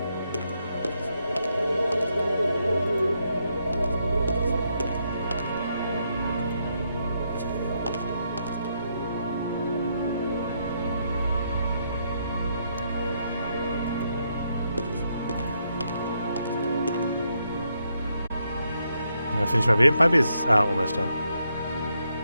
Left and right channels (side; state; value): both; inverted; correlation -0.78